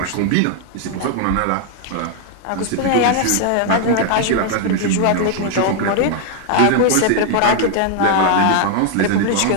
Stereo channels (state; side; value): different; both; correlation 0.00